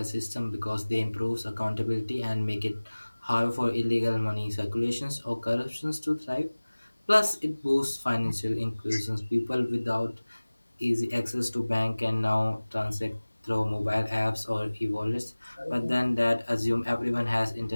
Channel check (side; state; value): both; inverted; correlation -1.00